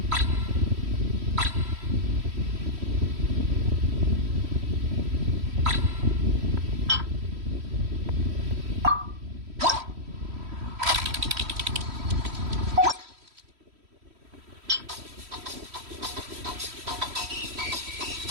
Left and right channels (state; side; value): late; left; 3.1 ms